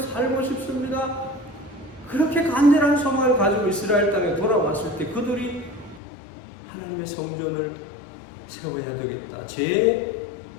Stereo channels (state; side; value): drops out; right; at 6.0 s